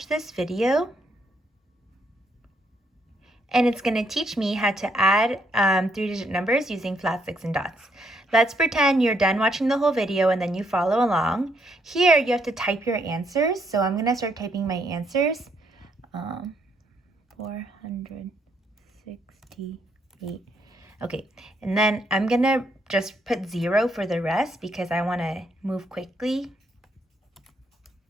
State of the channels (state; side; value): normal; both; correlation 0.73